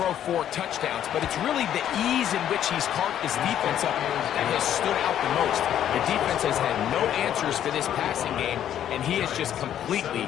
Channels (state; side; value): quieter; right; 10.5 dB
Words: 4 touchdowns, but it's really the ease in which he's carved his defense up that has stood out the most. The defense has had no answers for this passing game, and he has just completely